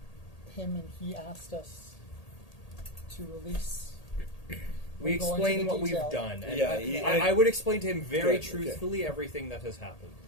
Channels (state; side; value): late; right; 1.8 ms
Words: him and he asked us to release. We We'll go into explain the what we've detail. done. And Yeah, I would explain to him very Good, okay. truthfully everything that has happened